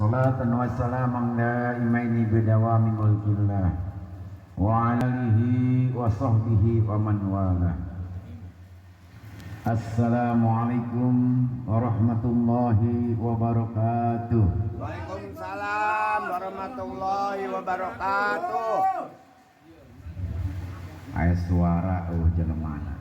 صلاة وسلاما دائمين بدوام ملك الله وعلى آله وصحبه ومن والاه. Assalamualaikum warahmatullahi wabarakatuh. Waalaikumsalam warahmatullahi wabarakatuh. Aya suara jelemana.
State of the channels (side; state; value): both; identical; correlation 1.00